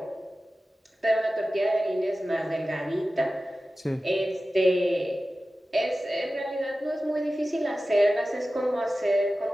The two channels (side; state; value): both; normal; correlation 0.95